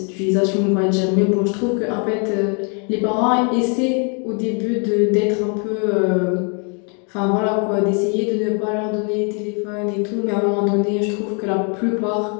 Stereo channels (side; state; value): right; quieter; 37.6 dB